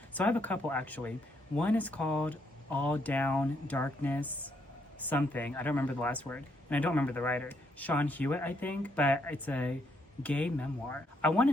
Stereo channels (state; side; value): normal; both; correlation 0.74